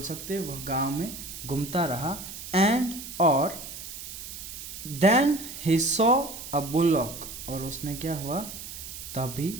सकते वह गांव में घूमता रहा। एंड और then he saw a bullock, और उसने क्या हुआ तभी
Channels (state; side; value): noise; right; hiss, 10 dB below the sound